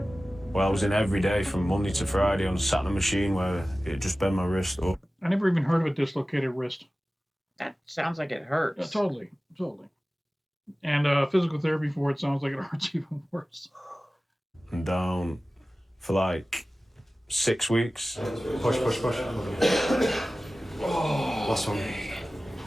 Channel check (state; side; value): normal; both; correlation 0.96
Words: Well, I was in every day from Monday to Friday on a sat in a machine where it just bent my wrist up. I never even heard of a dislocated wrist. That sounds like it hurts. Yeah, totally. And physical therapy for it sounds like it hurts even worse. I'm down for like 6 weeks. Push. Last one.